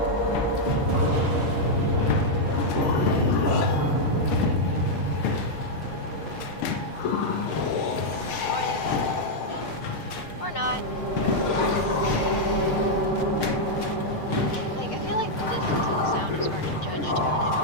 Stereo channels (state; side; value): late; right; 6.5 ms